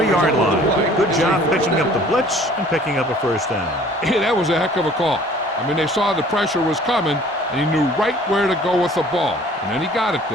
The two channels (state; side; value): normal; both; correlation 0.52